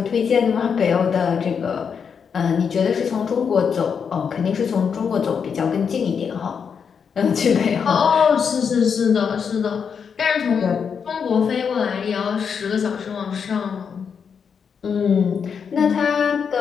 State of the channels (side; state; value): right; quieter; 6.6 dB